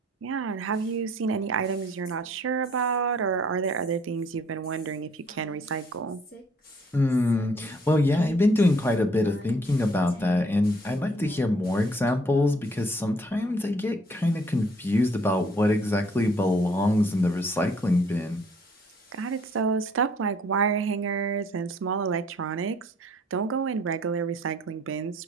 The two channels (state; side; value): normal; both; correlation 0.62